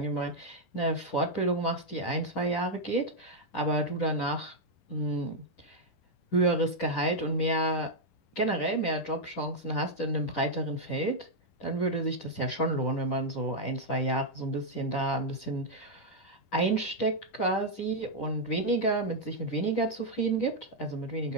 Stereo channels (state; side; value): late; right; 10 ms